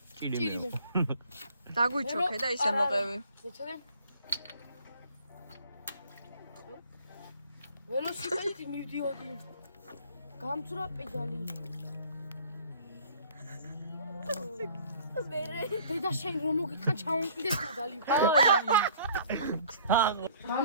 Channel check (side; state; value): both; inverted; correlation -0.53